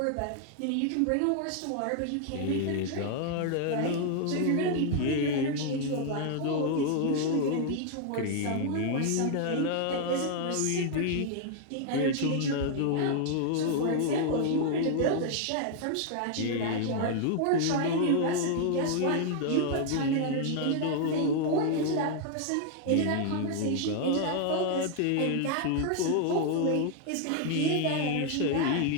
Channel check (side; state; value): both; different; correlation 0.00